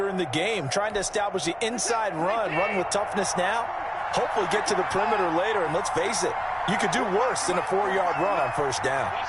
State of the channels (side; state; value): both; identical; correlation 1.00